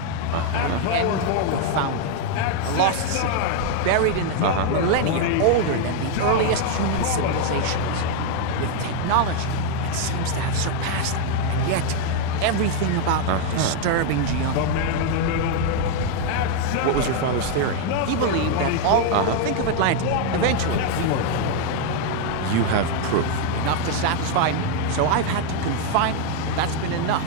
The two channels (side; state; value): both; different; correlation 0.00